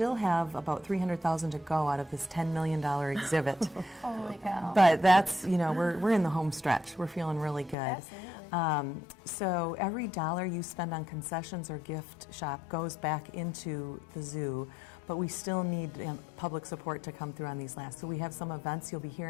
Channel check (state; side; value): drops out; right; at 7.8 s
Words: have about $300,000 to go out of this $10 million exhibit. Holy cow. But that's, we're in the home stretch. We're feeling really good. Absolutely. So every dollar you spend on concessions or gift shop goes back into the zoo, but we still need public support to come through on these last. So we have some events you'll be